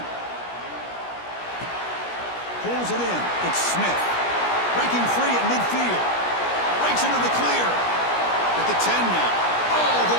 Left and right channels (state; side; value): late; right; 17 ms